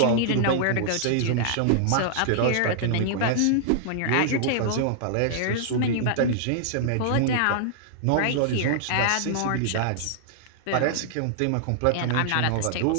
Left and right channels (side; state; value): both; different; correlation -0.01